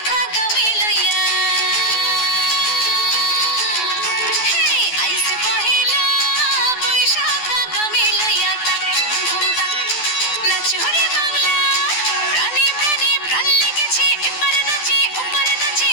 আগামী লইয়া হে আইসে পহেলা বৈশাখ আগামী লইয়া তাক ধুম তাক নাচো রে বাংলা প্রাণে প্রাণে প্রাণ লেগেছে এপারে নাচে ওপারে নাচে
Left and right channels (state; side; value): late; right; 12 ms